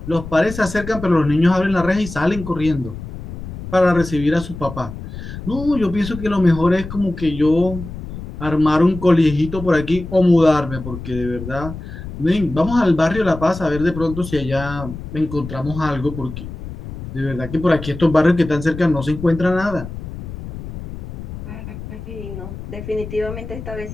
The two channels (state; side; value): noise; left; rumble, 10 dB below the sound